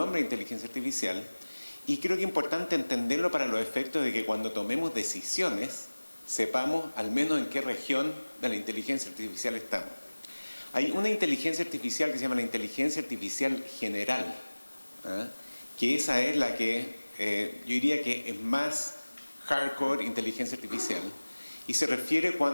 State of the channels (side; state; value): both; inverted; correlation -1.00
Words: de inteligencia artificial y creo que es importante entenderlo para los efectos de que cuando tomemos decisiones sepamos al menos en qué región de la inteligencia artificial estamos. Hay una inteligencia artificial que se llama la inteligencia artificial general, que esa es la que yo diría que es más hardcore inteligencia artificial y se refiere